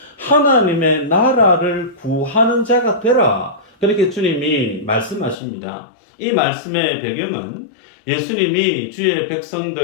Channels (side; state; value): right; drops out; at 5.4 s